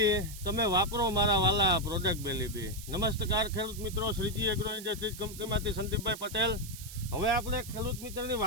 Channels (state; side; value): noise; right; hiss, 13 dB below the sound